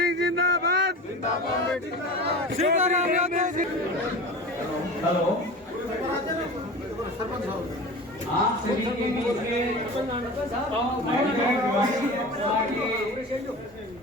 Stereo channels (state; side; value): normal; both; correlation 0.33